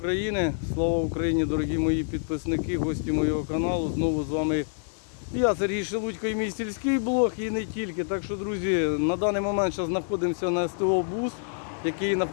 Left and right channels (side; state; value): right; silent; digital silence